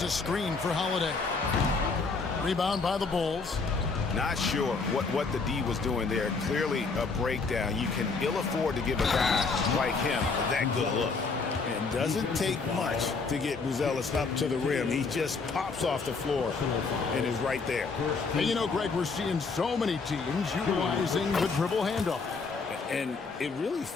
a screen for Holiday. Rebound by the Bulls. Not sure what the D was doing there. Clearly a breakdown. You can ill afford to give a guy like him that good look. And doesn't take much to get Buzelis up to the rim. He just pops off the floor and is right there. And you know, Greg, we're seeing so many teams utilizing the dribble handoff. And it really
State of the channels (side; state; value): right; quieter; 4.5 dB